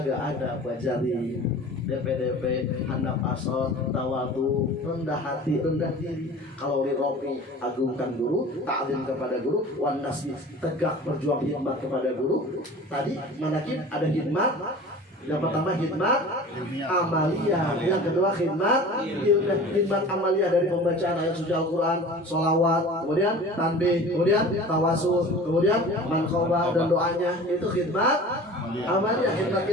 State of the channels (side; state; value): both; normal; correlation 0.40